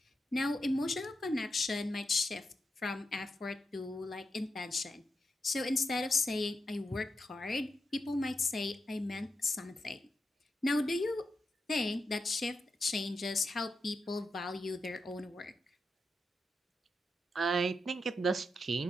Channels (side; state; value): both; normal; correlation 0.86